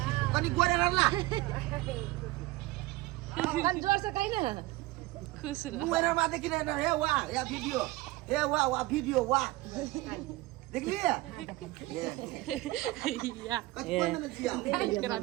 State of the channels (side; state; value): left; quieter; 19.4 dB